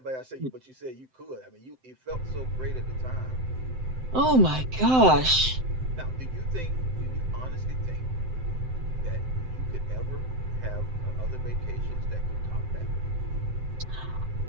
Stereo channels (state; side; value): late; left; 7.8 ms